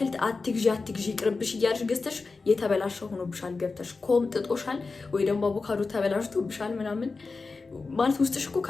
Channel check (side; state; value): right; quieter; 4.1 dB